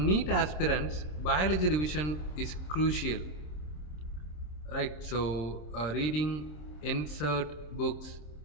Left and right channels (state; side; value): late; right; 27 ms